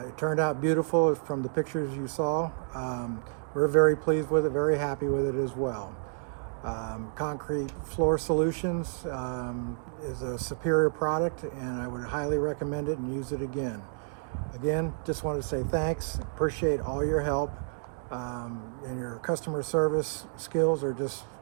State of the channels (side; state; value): left; silent; 58 dB below the other